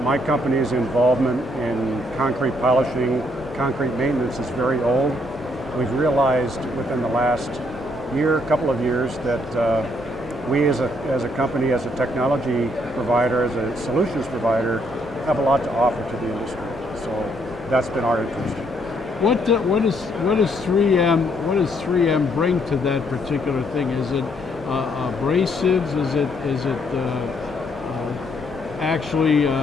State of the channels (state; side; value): normal; both; correlation 0.70